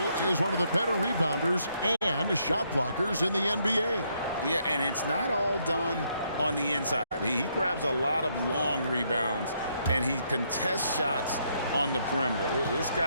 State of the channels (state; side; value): inverted; both; correlation -0.74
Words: is one of the better rebounders and shot blockers in the NBA. Yeah, and it's not all done on the inside. He grabs a lot of long rebounds, and he contests shots on the perimeter. This